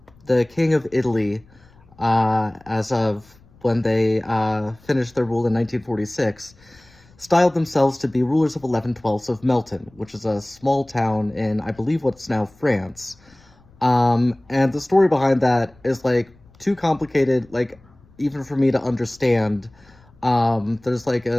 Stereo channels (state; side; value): noise; left; rumble, 28 dB below the sound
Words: The king of Italy, as of when they finished their rule in 1946, styled themselves to be rulers of 11/12 of Melton, which is a small town in, I believe, what's now France. And the story behind that is, like, too complicated, like, even for me to understand. There's, like,